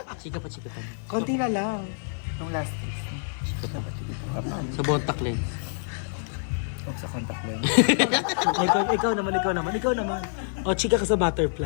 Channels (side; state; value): right; silent; 60 dB below the other